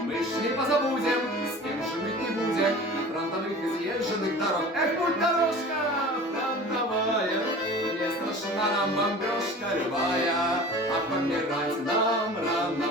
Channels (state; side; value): normal; both; correlation 0.40